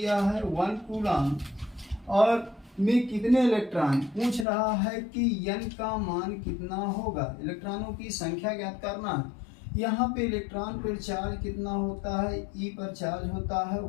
है 1 कूलाम और में कितने इलेक्ट्रॉन पूछ रहा है कि N का मान कितना होगा। इलेक्ट्रॉनों की संख्या ज्ञात करना है। यहाँ पे इलेक्ट्रॉन पर चार्ज कितना होता है, E पर चार्ज होता है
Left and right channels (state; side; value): drops out; right; at 4.5 s